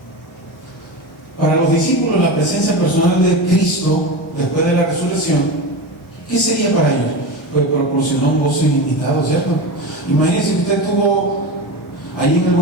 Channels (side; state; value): both; normal; correlation 0.23